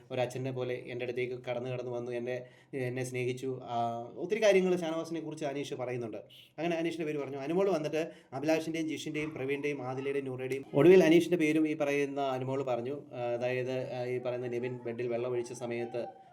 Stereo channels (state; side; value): identical; both; correlation 1.00